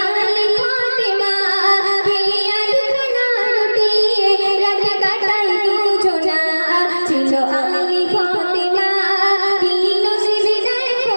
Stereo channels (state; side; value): inverted; both; correlation -1.00